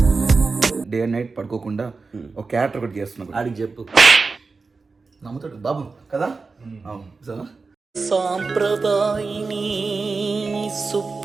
డే అండ్ నైట్ పడుకోకుండా ఒక క్యారెక్టర్ ఒకటి చేస్తున్నావు. ఆడికి చెప్పు, నమ్ముతాడు బాబు కదా. సాంప్రదాయిని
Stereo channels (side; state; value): left; quieter; 4.3 dB